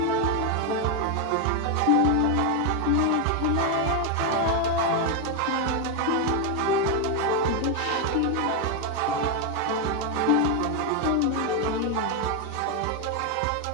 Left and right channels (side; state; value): both; different; correlation 0.02